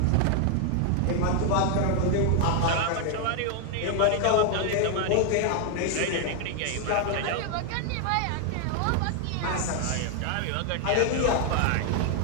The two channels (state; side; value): different; both; correlation 0.00